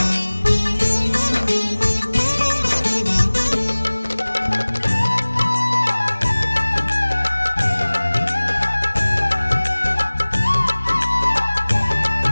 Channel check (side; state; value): both; inverted; correlation -1.00